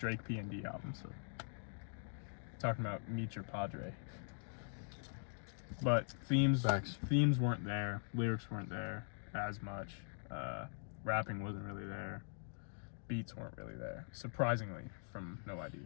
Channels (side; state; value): right; silent; digital silence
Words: P&D album. So talking about Meet Your Padre. But themes weren't there. Lyrics weren't there as much. Rapping wasn't really there. Beats weren't really there, surprisingly, from No ID.